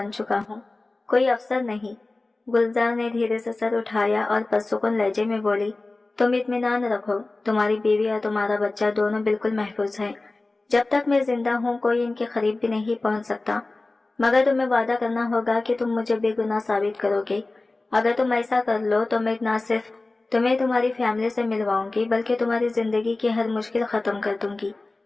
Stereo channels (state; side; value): quieter; right; 3.2 dB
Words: चुका हूँ, कोई अफसर नहीं। गुलजार ने धीरे से सर उठाया और पुरसुकून लहजे में बोली, तुम इत्मीनान रखो, तुम्हारी बीवी और तुम्हारा बच्चा दोनों बिल्कुल महफूज हैं। जब तक मैं जिंदा हूँ कोई इनके करीब भी नहीं पहुँच सकता, मगर तुम्हें वादा करना होगा कि तुम मुझे बेगुनाह साबित करोगे। अगर तुम ऐसा कर लो तो मैं न सिर्फ तुम्हें तुम्हारी फैमिली से मिलवाऊंगी बल्कि तुम्हारी जिंदगी की हर मुश्किल खत्म कर दूंगी।